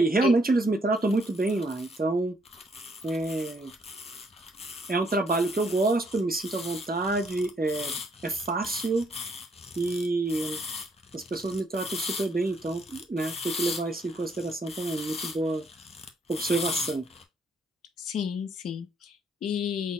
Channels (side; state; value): both; normal; correlation 0.69